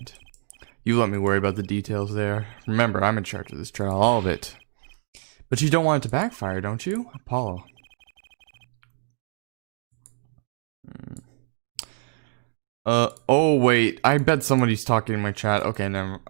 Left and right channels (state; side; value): silent; left; digital silence